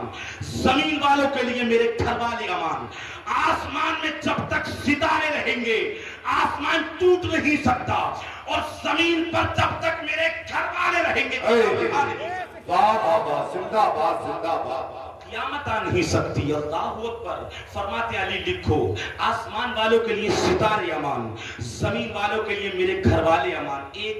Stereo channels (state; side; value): identical; both; correlation 1.00